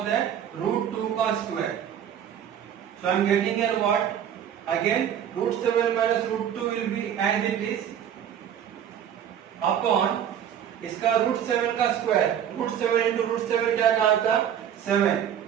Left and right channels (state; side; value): quieter; left; 9.5 dB